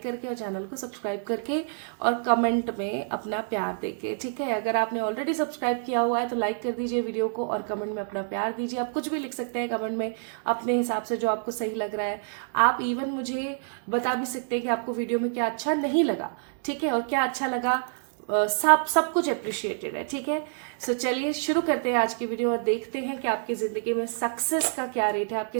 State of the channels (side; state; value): left; silent; digital silence